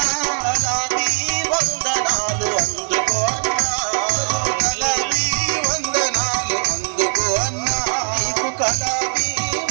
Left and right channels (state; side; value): silent; left; digital silence